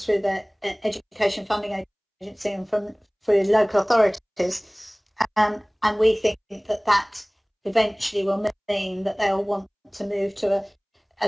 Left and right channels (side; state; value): both; identical; correlation 1.00